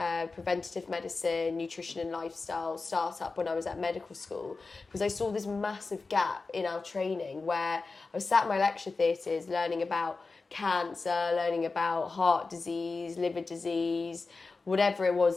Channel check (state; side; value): quieter; right; 4.0 dB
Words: preventative medicine, nutrition and lifestyle startup when I was at medical school because I saw this massive gap in our training where I was sat in my lecture theatres learning about cancer, learning about heart disease, liver disease, whatever it